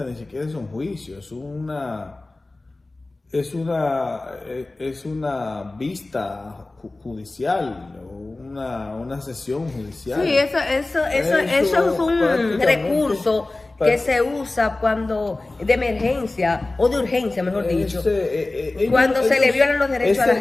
ni siquiera es un juicio, es una vista judicial, una sesión judicial. Sí, eso es un recurso que se usa cuando de emergencia o de urgencia, mejor dicho, cuando se le violan los derechos a la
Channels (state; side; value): quieter; right; 3.0 dB